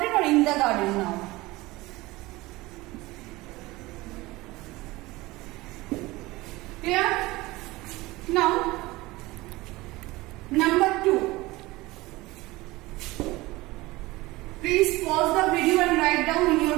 or in the garden now. Clear? Now, number 2. Please pause the video and write down in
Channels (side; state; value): left; quieter; 20.4 dB